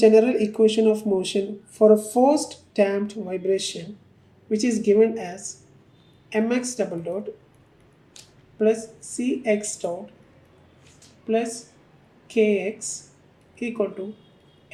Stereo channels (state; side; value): identical; both; correlation 1.00